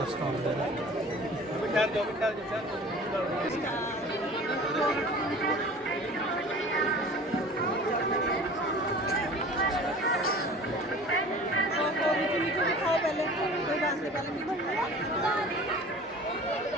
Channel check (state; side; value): normal; both; correlation 0.43